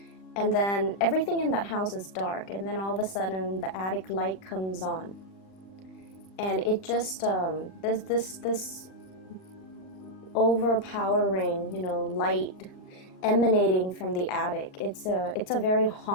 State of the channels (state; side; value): late; right; 40 ms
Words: And then everything in that house is dark, and then all of a sudden the attic light comes on, and it just there's this overpowering, light emanating from the attic. It's a very